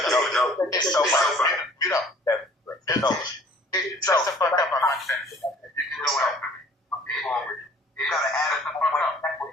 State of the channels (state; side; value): normal; both; correlation 0.53